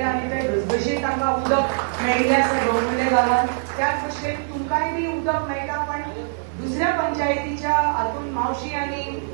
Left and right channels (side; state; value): left; silent; 64 dB below the other